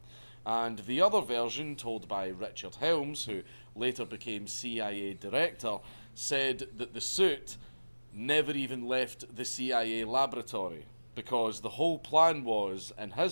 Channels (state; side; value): inverted; both; correlation -1.00